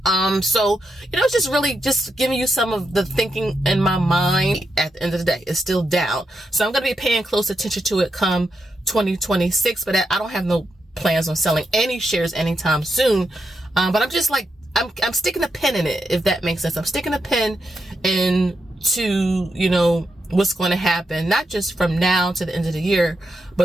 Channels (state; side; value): normal; both; correlation 0.84